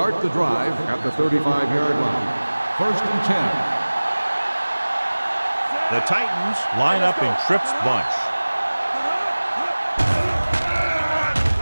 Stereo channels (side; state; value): both; inverted; correlation -1.00